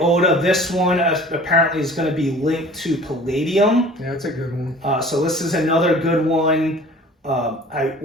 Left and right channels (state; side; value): normal; both; correlation 0.46